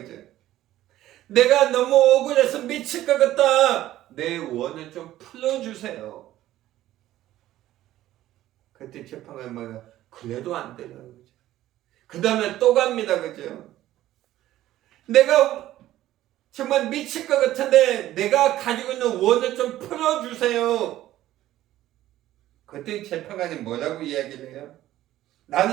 내가 너무 억울해서 미칠 것 같다. 내 원을 좀 풀어주세요. 그때 재판관이 뭐야? 그래도 안 되는 거죠. 그 다음에 또 갑니다. 그죠? 내가 정말 미칠 것 같은데 내가 가지고 있는 원을 좀 풀어주세요. 그때 재판관이 뭐라고 이야기를 해요?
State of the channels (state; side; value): quieter; left; 14.2 dB